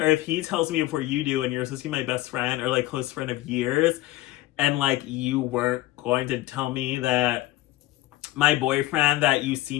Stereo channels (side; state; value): right; quieter; 16.7 dB